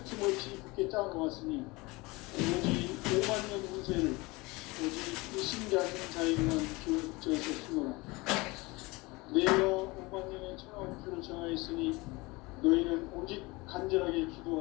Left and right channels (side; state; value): right; quieter; 23.7 dB